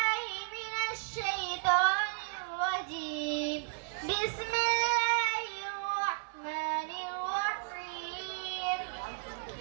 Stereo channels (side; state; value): left; quieter; 36.6 dB